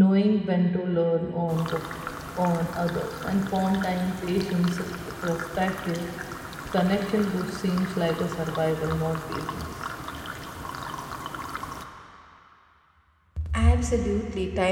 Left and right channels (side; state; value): both; identical; correlation 1.00